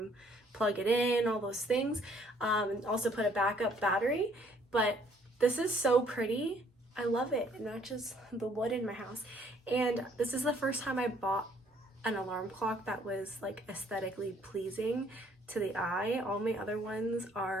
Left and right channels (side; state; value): both; normal; correlation 0.63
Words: plug it in, all those things, and also put a backup battery. But this is so pretty. I love it. It matches the wood in my house. And this is the first time I bought an alarm clock that was like aesthetically pleasing to the eye. All my other ones